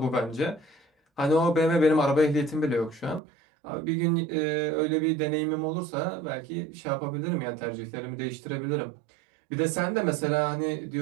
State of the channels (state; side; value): drops out; left; at 3.2 s